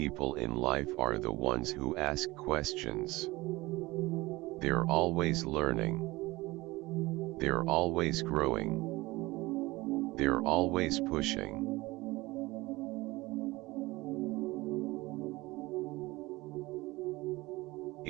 in life are the ones who ask questions. They're always learning. They're always growing. They're always pushing.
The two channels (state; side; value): quieter; left; 20.7 dB